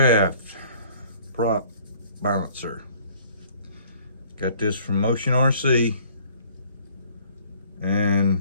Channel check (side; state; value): both; inverted; correlation -0.55